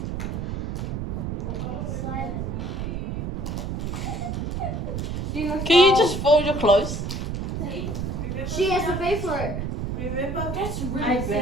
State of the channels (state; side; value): noise; right; rumble, 3 dB below the sound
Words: Can you just fold your clothes? She has to pay for it. Remember? That's really I